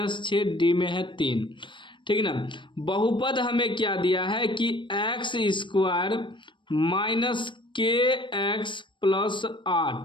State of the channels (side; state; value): right; late; 0.23 ms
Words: डी में है 3। ठीक है ना। बहुपद हमें क्या दिया है कि एक्स स्क्वायर माइनस के एक्स प्लस